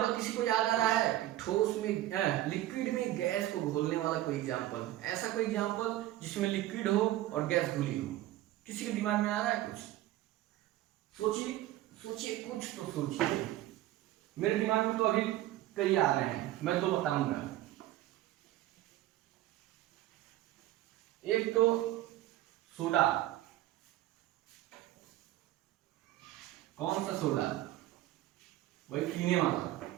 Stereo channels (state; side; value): quieter; left; 14.9 dB